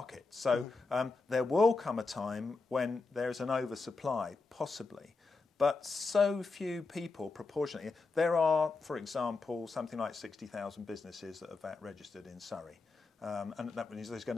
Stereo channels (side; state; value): right; quieter; 3.9 dB